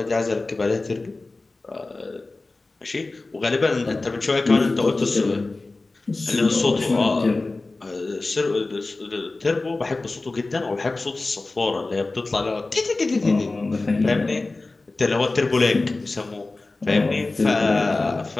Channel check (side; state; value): right; quieter; 3.3 dB